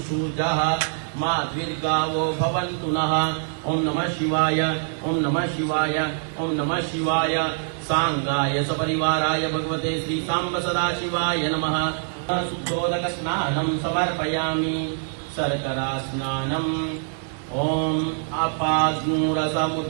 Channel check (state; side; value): silent; left; 60 dB below the other